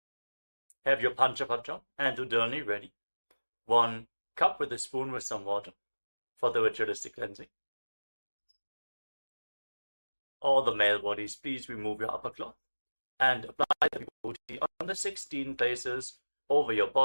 Panchapatra and Udani ready. 1 cup with a spoon with some water for the ritualistic cleansing. All the male bodies, please remove your upper cloth and apply the vibhuti on the 16 places over your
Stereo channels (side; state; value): both; inverted; correlation -1.00